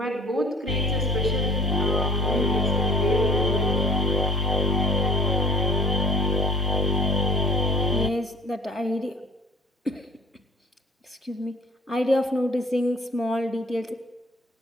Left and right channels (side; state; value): both; normal; correlation 0.48